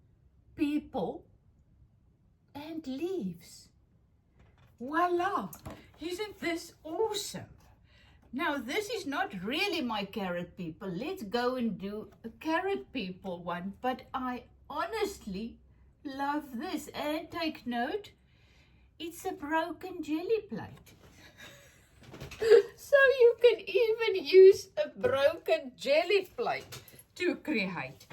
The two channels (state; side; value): identical; both; correlation 1.00